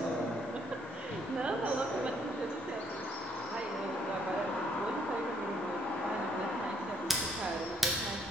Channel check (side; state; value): both; normal; correlation 0.68